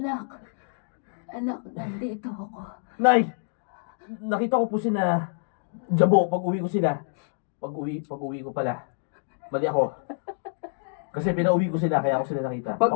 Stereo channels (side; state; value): right; silent; digital silence